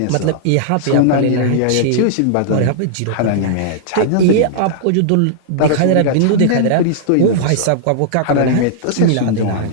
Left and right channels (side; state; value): both; different; correlation -0.01